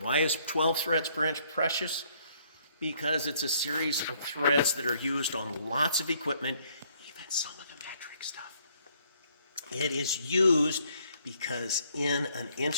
is 12 threads per inch precious? Because it's a series of threads that are used on lots of equipment, even some of the metric stuff. It is used because in an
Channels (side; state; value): both; inverted; correlation -0.66